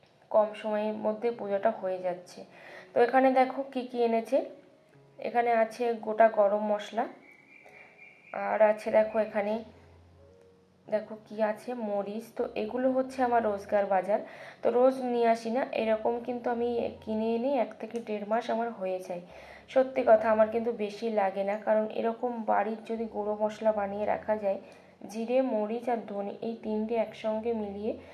কম সময়ের মধ্যে পূজাটা হয়ে যাচ্ছে। তো এখানে দেখো কি কি এনেছে, এখানে আছে গোটা গরম মশলা, আর আছে দেখো এখানে দেখো কি আছে, মরিচ। তো এগুলো হচ্ছে আমার রোজগার বাজার, তো রোজ নিয়ে আসি না, এরকম কিন্তু আমি কিনে এনে 1 থেকে 1.5 মাস আমার হয়ে যায়। সত্যি কথা, আমার কিন্তু বেশি লাগে না, কারণ এরকম বাড়ির যদি গুঁড়ো মশলা বানিয়ে রাখা যায়, জিরে মরিচ আর ধনে এই 3টে একসঙ্গে মিলিয়ে,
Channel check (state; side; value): identical; both; correlation 1.00